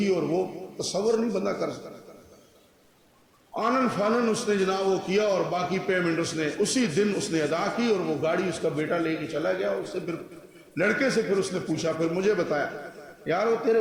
اور وہ تصور نہیں بندہ کر سکتا۔ آنن فانن اس نے جناب وہ کیا، اور باقی پیمنٹ اس نے اسی دن اس نے ادا کی، اور وہ گاڑی اس کا بیٹا لے کے چلا گیا۔ اس سے پھر لڑکے سے پھر اس نے پوچھا، پھر مجھے بتایا یار وہ تیرے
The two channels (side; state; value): both; identical; correlation 1.00